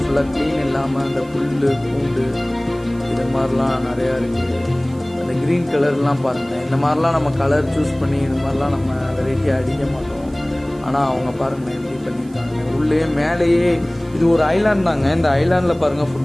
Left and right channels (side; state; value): right; noise; hiss, 27 dB below the sound